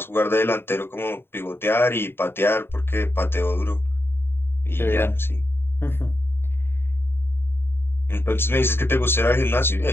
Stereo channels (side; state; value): right; late; 0.11 ms